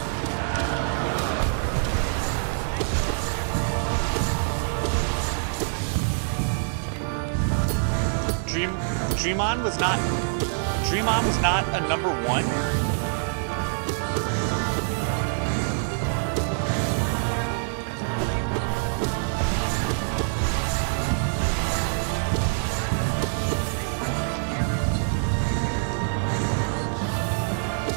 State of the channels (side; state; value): left; silent; digital silence